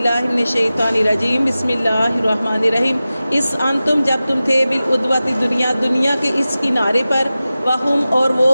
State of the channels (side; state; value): both; inverted; correlation -0.95